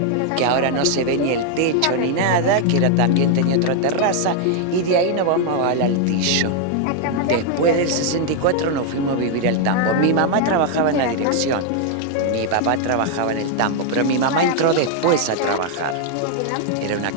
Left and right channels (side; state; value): both; different; correlation 0.00